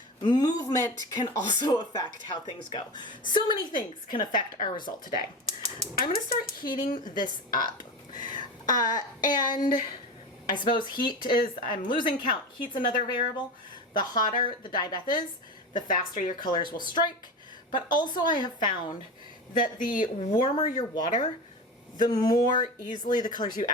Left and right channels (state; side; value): normal; both; correlation 0.26